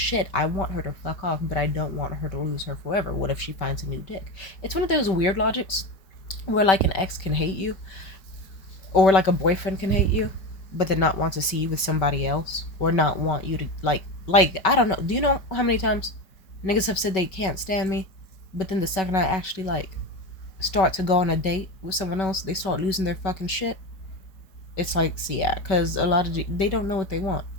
I want her to fuck off, but I don't want her to lose her forever. What if she finds a new dick?" It's one of those weird logics where like an ex can hate you, or like a boyfriend can hate you, but then not want to see you with somebody else, or not want you to like I don't know. Do you know how many times niggas have said they can't stand me, but then the second I actually like start to go on a date with someone else, they start losing their fucking shit. It's like, see, yeah, because a lot of they don't know what they want.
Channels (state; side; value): late; right; 5.3 ms